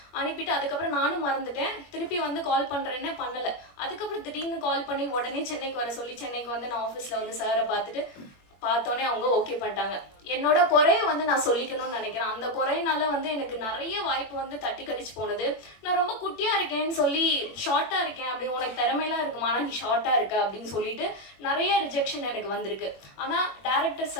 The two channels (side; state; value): right; late; 21 ms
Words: அனுப்பிட்டு, அதுக்கப்புறம் நானும் மறந்துட்டேன். திருப்பி வந்து கால் பண்ணுறேன்னு பண்ணலை. அதுக்கப்புறம் திடீர்னு கால் பண்ணி உடனே சென்னைக்கு வர சொல்லி, சென்னைக்கு வந்து நான் ஆஃபீஸில் வந்து சாரை பார்த்தோன்னே அவங்க ஓகே பண்ணிட்டாங்க. என்னோட குறைய வந்து நான் சொல்லிக்கணும்னு நினைக்கிறேன். அந்த குறையினால வந்து எனக்கு நிறைய வாய்ப்பு வந்து தட்டி கடிச்சு போனது. நான் ரொம்ப குட்டியாக இருக்கேன்னு சொல்லி, ஷார்ட்டாக இருக்கேன் அப்படி, உனக்கு திறமையெல்லாம் இருக்குமா ஆனால் நீ ஷார்ட்டாக இருக்க அப்படின்னு சொல்லிட்டு நிறைய ரிஜெக்ஷன் எனக்கு வந்திருக்கு. ஆனால் டேரக்டர்